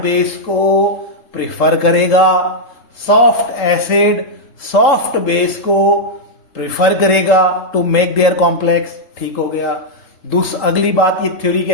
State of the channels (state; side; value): late; right; 3.8 ms